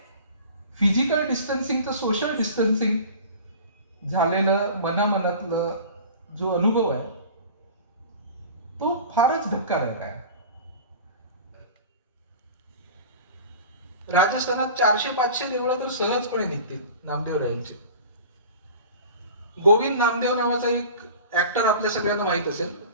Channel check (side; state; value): both; inverted; correlation -0.39